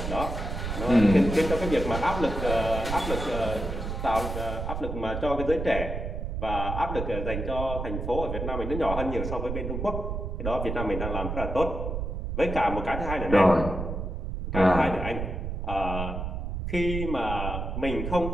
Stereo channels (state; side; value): noise; right; rumble, 4 dB below the sound